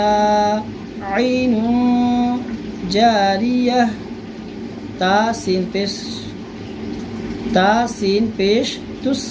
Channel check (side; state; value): both; identical; correlation 1.00